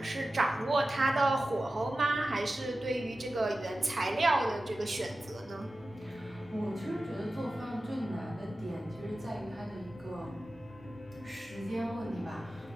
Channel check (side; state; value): both; normal; correlation 0.94